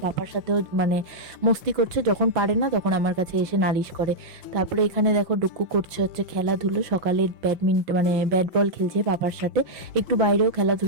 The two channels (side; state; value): left; late; 5.6 ms